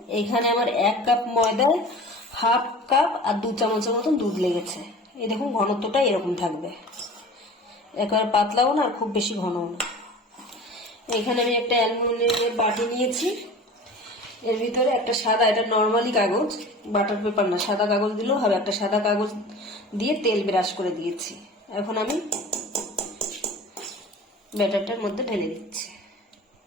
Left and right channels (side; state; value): both; normal; correlation 0.39